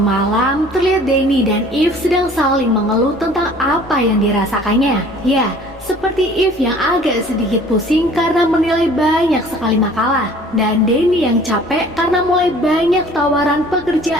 terlihat Danny dan Eve sedang saling mengeluh tentang apa yang dirasakannya. Ya, seperti Eve yang agak sedikit pusing karena menilai banyak sekali makalah, dan Danny yang capek karena mulai banyak tawaran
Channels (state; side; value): noise; left; rumble, 27 dB below the sound